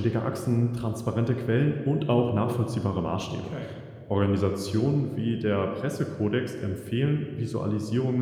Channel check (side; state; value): both; identical; correlation 1.00